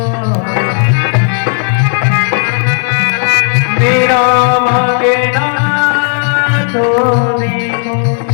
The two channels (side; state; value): right; silent; 57 dB below the other